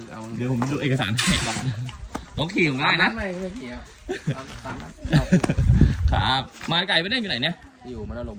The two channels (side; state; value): both; identical; correlation 1.00